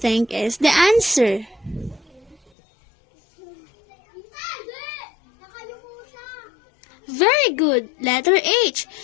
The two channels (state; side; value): drops out; right; at 2.4 s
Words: is the answer? Very good. Letter H.